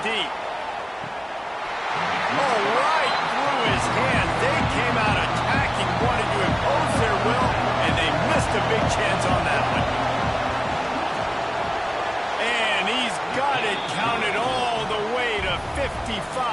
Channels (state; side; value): identical; both; correlation 1.00